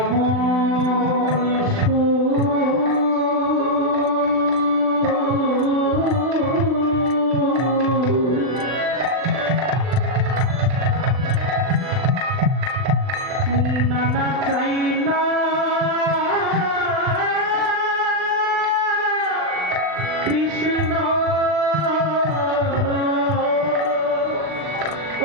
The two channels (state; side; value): late; left; 39 ms